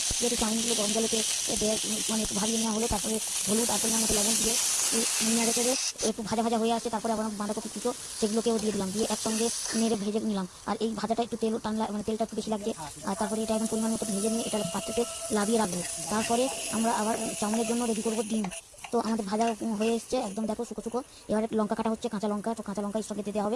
যেহেতু চাউমিনগুলো গরম জলেতে মানে একটু ভাবিয়ে নেওয়া হলো, তারপরে হলুদ আর পরিমাণ মতো লবণ দিয়ে নেড়ে চেড়ে একটু ভাজা ভাজা হয়ে আসছে। তারপরে আবার বাঁধাকপি কুচো সেগুলোকেও দিয়ে দিলাম, দিয়ে একসঙ্গে নেড়ে ভেজে নিলাম। আর এই ভাজাটা একটু তেল টান, মানে তেলটা একটু বেশি লাগছে। আর তারপরে এটা এখন পরিমাণ মতো ভেজে নিয়ে এটা পাত্রতে লাভিয়ে রাখবো। তারপরে আমরা আবার চাউমিনের জন্য রেডি করবো ডিম। তো আমাদের ভাজা হয়ে এসছে একদম, দেখো শুকো শুকো। এবারে লঙ্কা কাটা হচ্ছে, কাঁচা লঙ্কা। তো কাঁচা লঙ্কা এর সঙ্গে দিতে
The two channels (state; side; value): identical; both; correlation 1.00